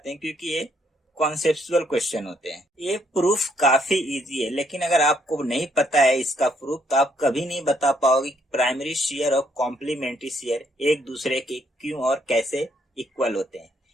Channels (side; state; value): both; normal; correlation 0.71